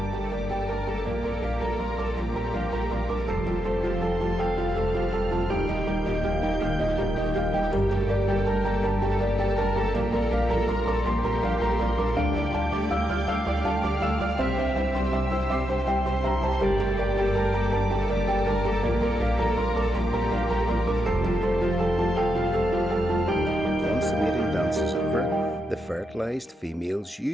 The fertilised females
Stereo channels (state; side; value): normal; both; correlation 0.84